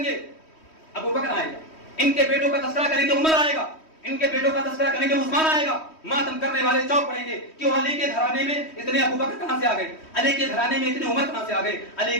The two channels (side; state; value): right; late; 3.1 ms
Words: گے ابو بکر آئے گا، ان کے بیٹوں کا تذکرہ کریں گے عمر آئے گا، ان کے بیٹوں کا تذکرہ کریں گے عثمان آئے گا، ماتم کرنے والے چوک پڑیں گے کہ علی کے گھرانے میں اتنے ابو بکر کہاں سے آ گئے، علی کے گھرانے میں اتنے عمر کہاں سے آ گئے، علی